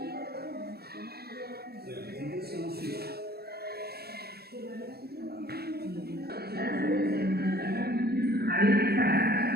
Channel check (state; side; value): late; left; 0.46 ms